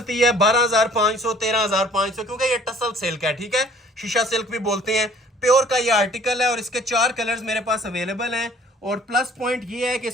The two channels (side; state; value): both; normal; correlation 0.54